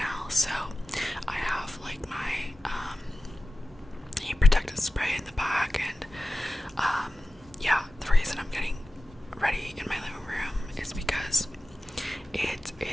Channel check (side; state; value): both; normal; correlation 0.95